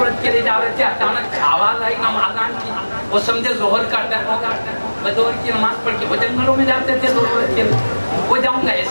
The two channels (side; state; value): both; inverted; correlation -1.00